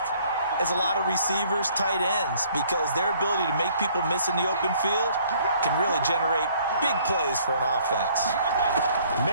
as a lot of receivers, tight ends, because their ability to make people miss in the open field can really generate big plays for an offense.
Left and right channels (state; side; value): inverted; both; correlation -0.60